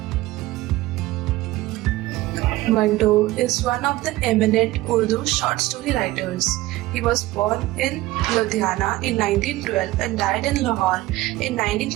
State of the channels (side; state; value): left; quieter; 17.7 dB